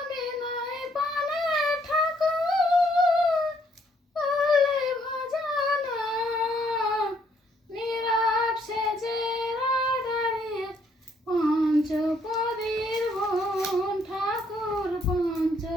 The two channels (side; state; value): both; normal; correlation 0.68